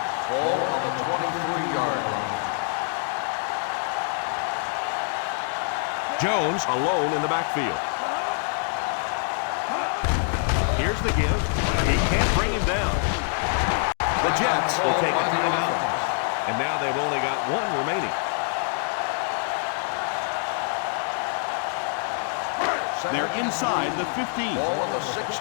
Ball on the 23-yard line. Jones alone in the backfield. Here's the give. He can't bring him down. The Jets will take a timeout. And now they've only got one remaining. They're inside the 15. Ball on the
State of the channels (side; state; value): right; silent; 59 dB below the other